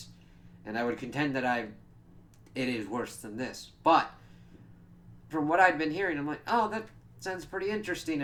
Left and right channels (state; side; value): identical; both; correlation 1.00